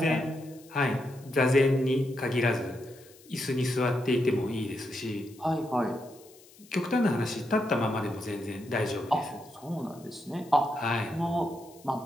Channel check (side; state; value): left; noise; hiss, 24 dB below the sound